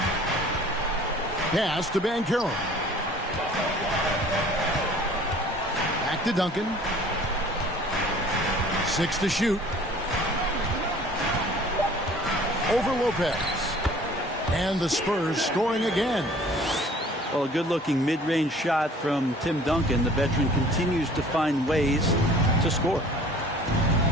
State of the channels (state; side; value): normal; both; correlation 0.50